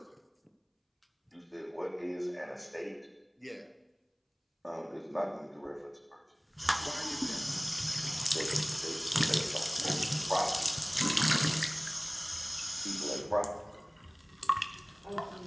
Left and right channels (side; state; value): both; identical; correlation 1.00